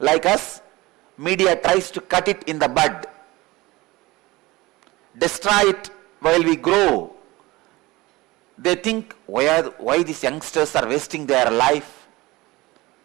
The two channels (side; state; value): left; quieter; 20.5 dB